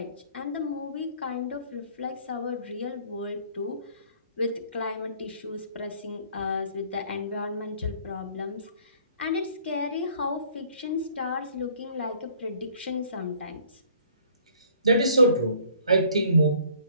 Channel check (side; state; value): both; inverted; correlation -0.57